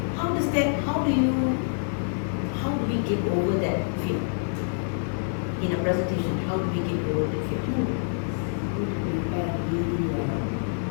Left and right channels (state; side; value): silent; right; digital silence